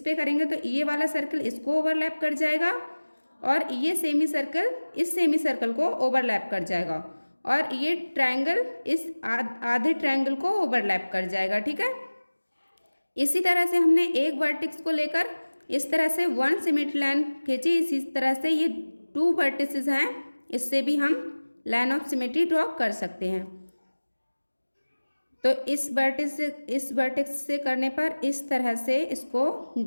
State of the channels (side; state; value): both; inverted; correlation -1.00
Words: करेंगे तो ये वाला सर्कल इसको ओवरलैप कर जाएगा और ये सेमी सर्कल इस सेमी सर्कल को ओवरलैप कर जाएगा, और ये ट्रायंगल इस आधे ट्रायंगल को ओवरलैप कर जाएगा, ठीक है। इसी तरह से हमने एक वर्टेक्स को लेकर इस तरह से 1 सिमेट्री लाइन खींची, इसी तरह से ये 2 वर्टिसेस हैं, इससे भी हम लाइन ऑफ सिमेट्री ड्रॉ कर सकते हैं। तो इस वर्टेक्स से करने पर इस तरह से इसको